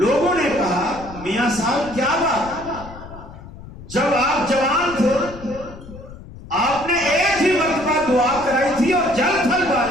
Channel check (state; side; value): noise; left; rumble, 16 dB below the sound